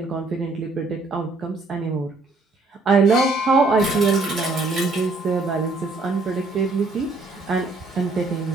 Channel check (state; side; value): quieter; left; 3.4 dB